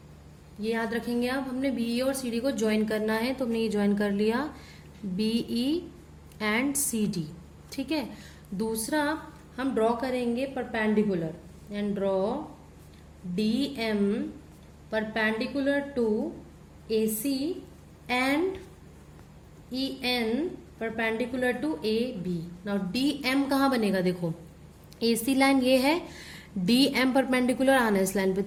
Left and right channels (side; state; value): both; identical; correlation 1.00